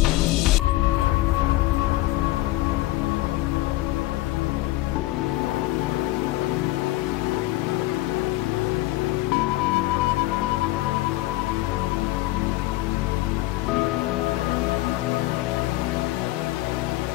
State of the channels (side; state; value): right; quieter; 17.7 dB